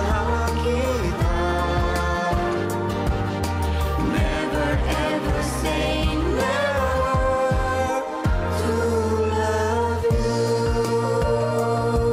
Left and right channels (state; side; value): identical; both; correlation 1.00